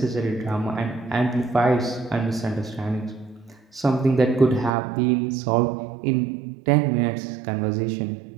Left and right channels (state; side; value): drops out; left; at 4.7 s